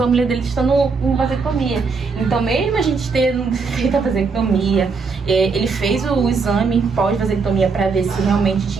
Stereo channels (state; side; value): quieter; left; 4.7 dB